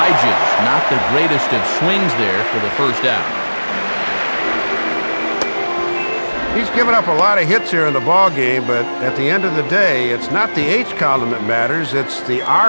Not the greatest of swings there for the first out. He's given up a lot of hits here in the ball game, but at the end of the day, it's not the H column that matters, it's the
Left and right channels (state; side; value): inverted; both; correlation -1.00